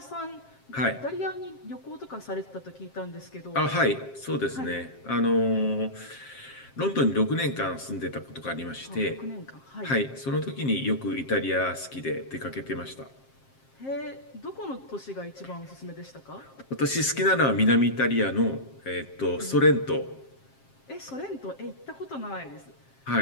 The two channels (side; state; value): right; late; 7.5 ms